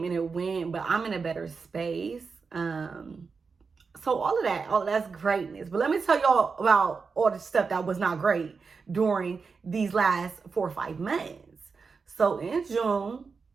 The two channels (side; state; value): left; quieter; 5.0 dB